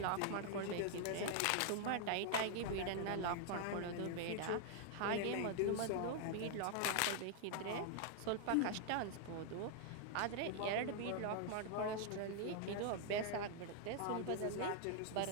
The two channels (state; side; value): different; both; correlation 0.00